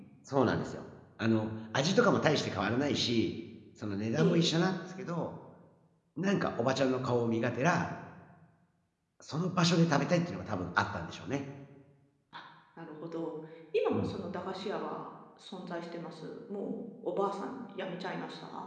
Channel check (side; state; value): both; identical; correlation 1.00